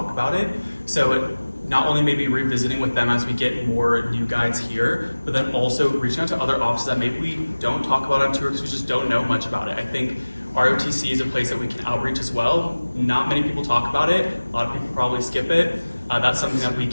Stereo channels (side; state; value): both; inverted; correlation -1.00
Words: about it. So not only maybe revisiting with them as we get more new guides here, but then also reaching out to other offices that maybe we don't talk about on tour because we just don't know much about it. I think ROTC is a place that we can outreach as well. Not many people talk about it. A lot of people probably skip it. That's something that we